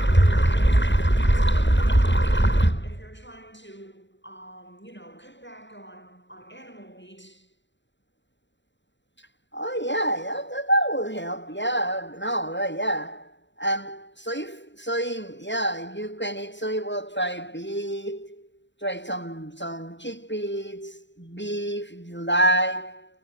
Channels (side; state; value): right; late; 0.53 ms